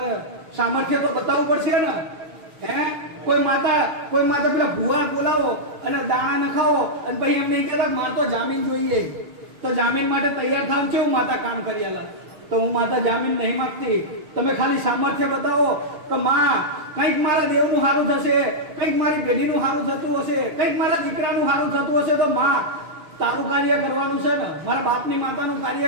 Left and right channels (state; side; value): late; left; 6.7 ms